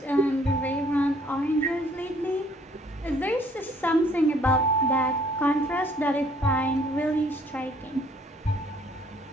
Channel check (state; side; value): normal; both; correlation 0.61